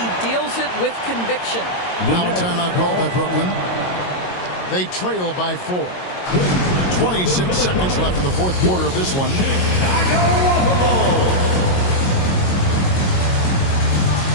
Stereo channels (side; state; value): right; late; 22 ms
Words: deals it with conviction. Now a timeout called by Brooklyn. They trail by 4. 26 seconds left in the 4th quarter of this one.